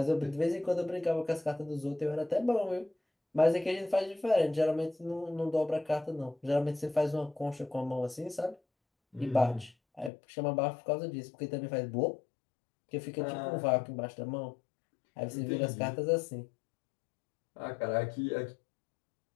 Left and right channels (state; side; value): drops out; right; at 10.1 s